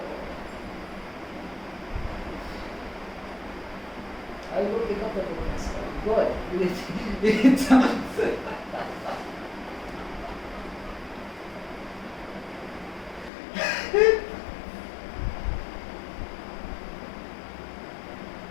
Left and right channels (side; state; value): right; drops out; at 13.3 s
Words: I will pick up the book myself. Go ahead. It sounds.